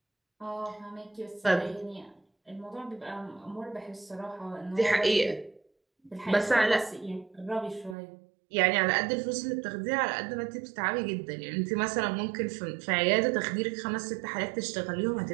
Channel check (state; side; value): drops out; left; at 8.0 s